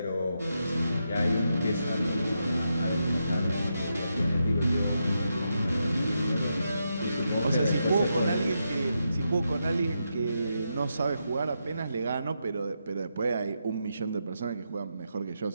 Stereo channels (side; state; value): both; inverted; correlation -0.84